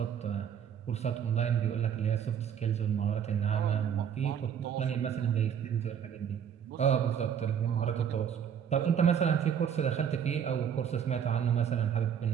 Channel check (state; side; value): quieter; left; 8.3 dB